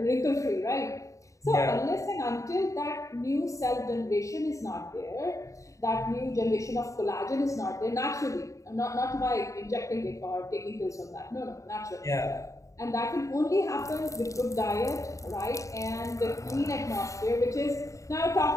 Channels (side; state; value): right; late; 0.16 ms